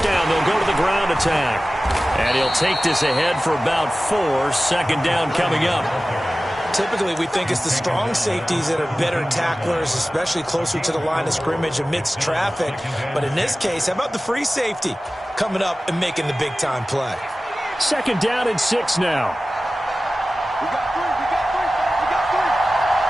down, they'll go to the ground attack. And he'll take this ahead for about 4. 2nd down coming up. Typically, we think it's the strong safeties that are better tacklers, especially closer to the line of scrimmage amidst traffic. But in this case, how about the free safety coming up and making the big-time play? 2nd down and 6 now. We got 3.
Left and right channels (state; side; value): normal; both; correlation 0.96